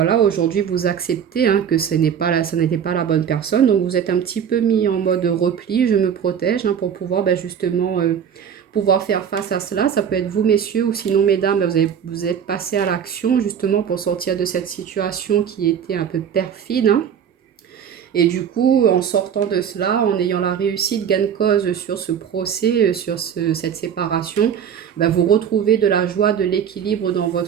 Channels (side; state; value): left; quieter; 8.2 dB